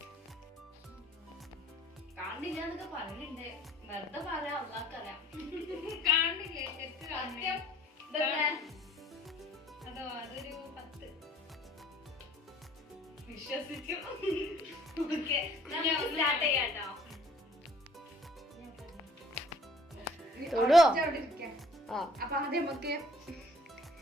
കാണില്ല എന്നൊക്കെ പറയുന്നുണ്ട്, വെറുതെ പറയാം, അള്ളാക്കറിയാം. കാണില്ലേ? അതോ അതൊരു 10 വിശ്വസിച്ചു. ഓക്കെ, സ്റ്റാർട്ട് ചെയ്യാട്ടോ. അപ്പൊ ആദ്യം നമുക്ക്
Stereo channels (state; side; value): normal; both; correlation 0.55